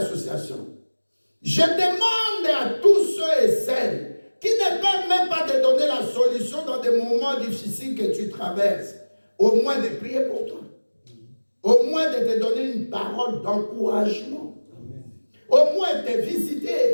Je demande à tous ceux et celles qui ne peuvent même pas te donner la solution dans des moments difficiles que tu traverses, au moins de prier pour toi. Au moins de te donner une parole d'encouragement. Au moins de te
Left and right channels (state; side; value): inverted; both; correlation -1.00